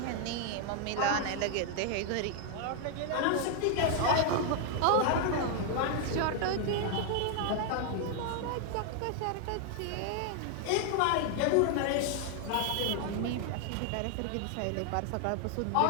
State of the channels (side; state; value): both; different; correlation 0.00